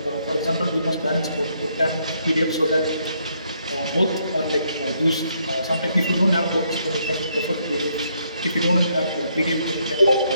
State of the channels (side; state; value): both; inverted; correlation -0.73